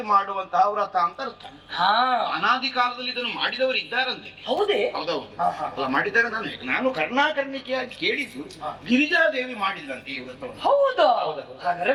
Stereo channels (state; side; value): identical; both; correlation 1.00